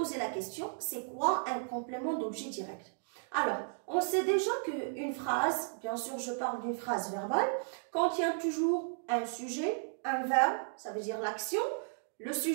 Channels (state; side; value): silent; left; digital silence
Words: la question, c'est quoi un complément d'objet direct? Alors, on sait déjà qu'une phrase, bien sûr je parle d'une phrase verbale, contient toujours un sujet, un verbe, ça veut dire l'action. Le